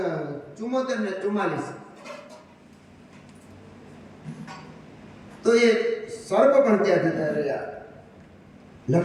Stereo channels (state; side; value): identical; both; correlation 1.00